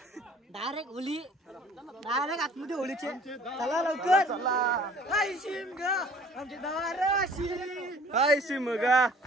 डायरेक्ट होली डायरेक्ट आतमध्ये होलीचे चला लवकर हाय शिमगा आमची दाराशी हाय शिमगा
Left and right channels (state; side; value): normal; both; correlation 0.52